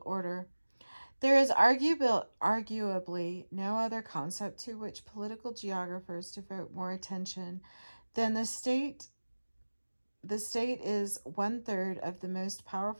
order. There is arguably no other concept to which political geographers devote more attention than the state. The state is one third of the most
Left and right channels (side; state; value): both; inverted; correlation -1.00